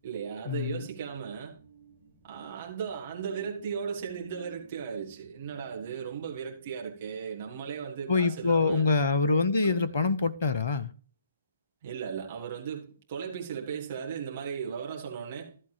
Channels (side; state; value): both; inverted; correlation -0.63